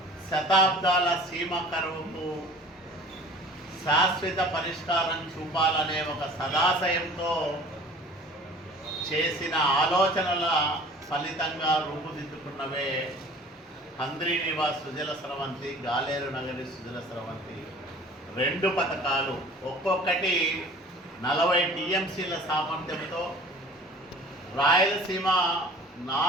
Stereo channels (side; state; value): both; normal; correlation 0.46